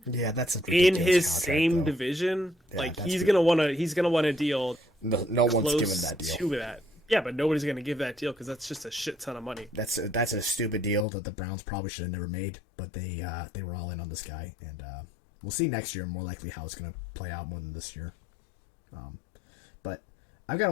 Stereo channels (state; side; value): drops out; right; at 11.1 s